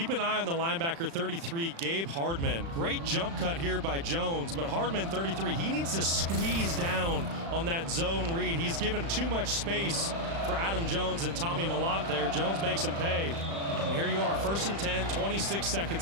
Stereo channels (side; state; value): left; late; 36 ms